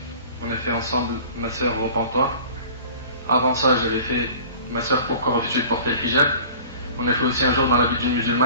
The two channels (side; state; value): both; inverted; correlation -0.44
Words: On a fait ensemble ma sœur repentoire. Avant ça, j'avais fait ma sœur pourquoi refuser de porter le hijab. On a fait aussi un jour dans la vie d'une